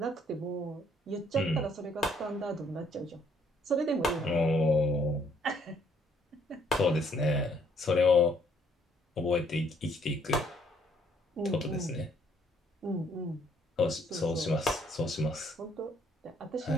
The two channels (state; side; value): normal; both; correlation 0.66